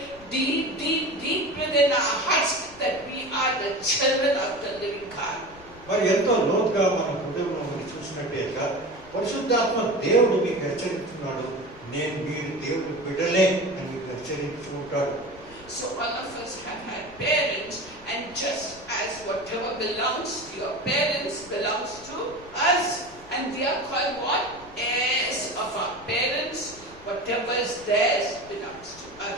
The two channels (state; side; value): noise; left; rumble, 21 dB below the sound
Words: deep, deep, deep within our hearts that we are the children of the living God. మరి ఎంతో లోతుగా మన హృదయంలో మనం చూసినట్టేగా పరిశుద్ధాత్మ దేవుడు మీకు హెచ్చరిస్తున్నాడు, నేను మీరు దేవుని బిడ్డలే అని మీకు హెచ్చరించుకుంటాడు. So all of us have had parents, and just as whatever belongs to your parents belongs to us, and we are called what? Heirs of our parents. Whatever is theirs belongs to